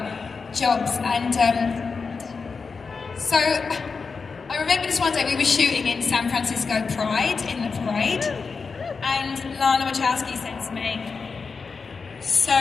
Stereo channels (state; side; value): quieter; right; 4.9 dB